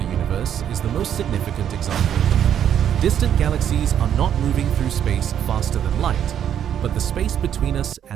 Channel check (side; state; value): left; quieter; 9.5 dB